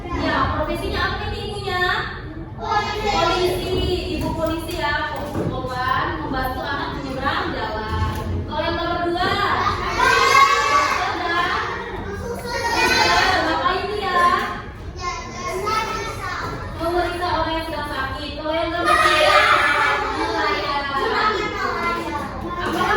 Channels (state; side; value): identical; both; correlation 1.00